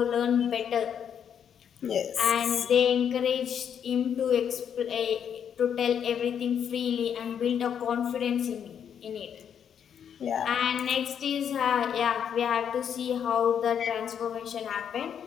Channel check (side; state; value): right; quieter; 8.3 dB